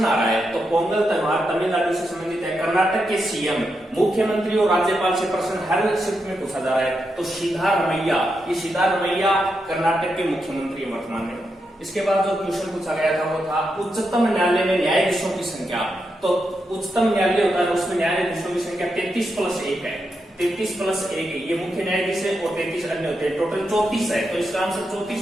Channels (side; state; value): both; normal; correlation 0.85